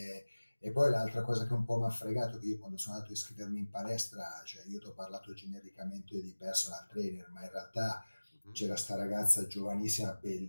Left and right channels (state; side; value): inverted; both; correlation -1.00